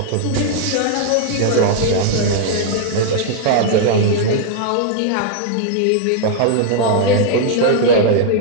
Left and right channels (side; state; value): both; different; correlation -0.01